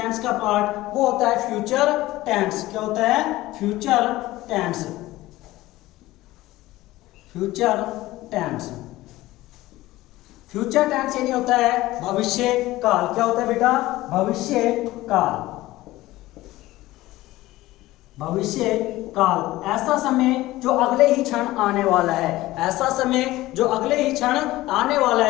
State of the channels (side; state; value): right; quieter; 17.4 dB